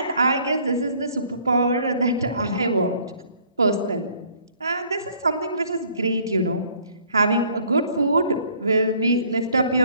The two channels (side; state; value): both; inverted; correlation -0.59